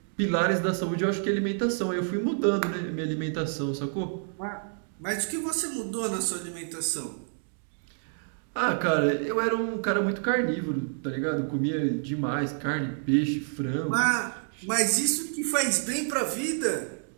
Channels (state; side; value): silent; left; digital silence